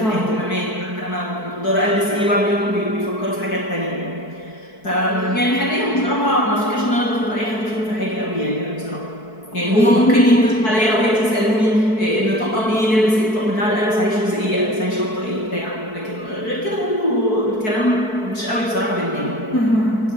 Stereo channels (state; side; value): late; right; 4.6 ms